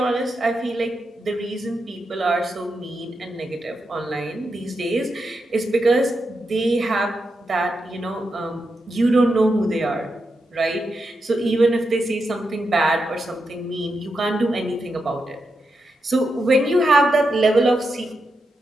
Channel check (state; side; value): normal; both; correlation 0.86